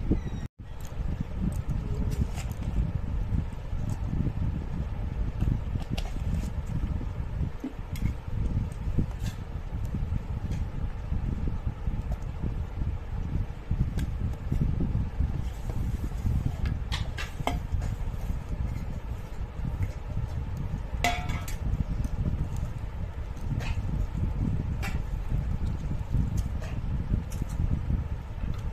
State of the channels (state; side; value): identical; both; correlation 1.00